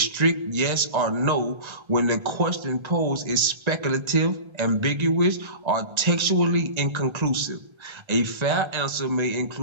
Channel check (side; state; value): left; late; 1.3 ms